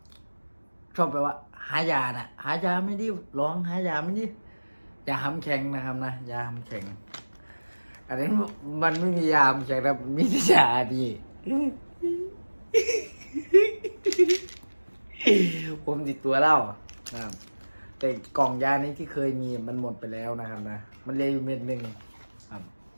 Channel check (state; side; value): inverted; both; correlation -1.00